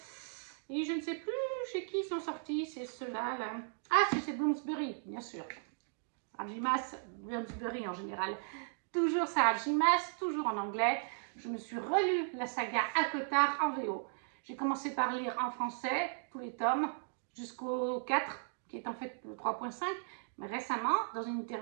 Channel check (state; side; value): silent; left; digital silence